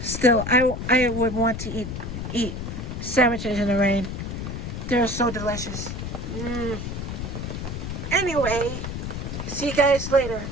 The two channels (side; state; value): left; noise; rumble, 5 dB below the sound